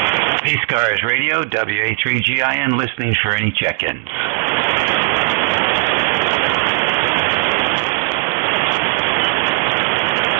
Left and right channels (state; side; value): quieter; left; 28.5 dB